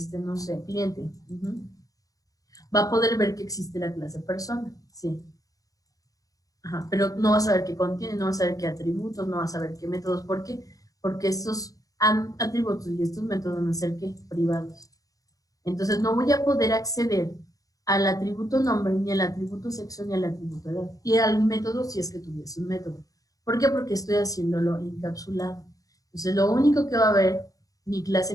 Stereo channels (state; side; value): late; right; 0.17 ms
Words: sé, cliente, va a poder ver que existe la clase persona, sí. Ajá, pero no va a saber qué contiene, no va a saber qué atributos, no va a saber qué métodos. ¿Por qué? Porque estos atributos y estos métodos van a ser ¿qué? Privados. Entonces no voy a poder acceder al atributo nombre, ni al atributo sexo, ni al atributo edad. Y al método si es que tuviese un método. ¿Por qué? Porque estoy haciéndolo encapsulado. Entonces lo único que va a ver mi